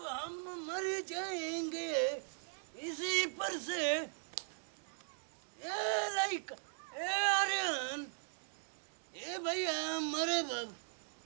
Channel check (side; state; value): left; silent; digital silence